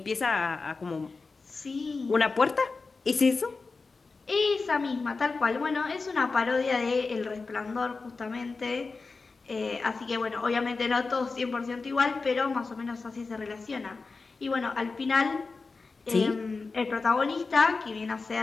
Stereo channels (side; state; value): right; quieter; 4.1 dB